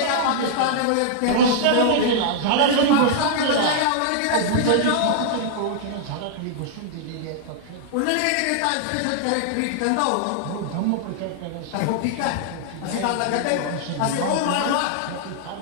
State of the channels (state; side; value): different; both; correlation -0.01